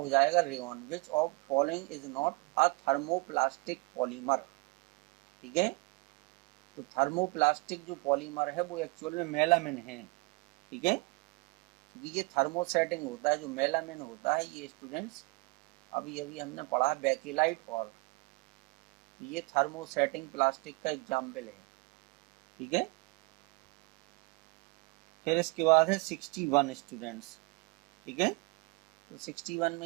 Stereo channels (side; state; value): left; quieter; 27.6 dB